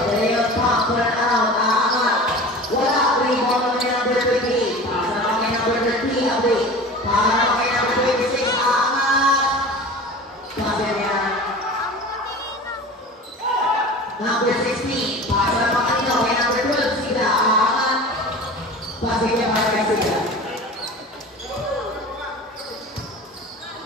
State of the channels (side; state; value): both; normal; correlation 0.36